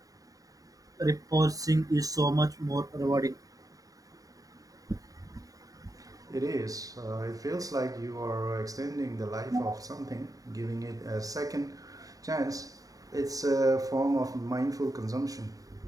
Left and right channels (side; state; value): left; late; 0.17 ms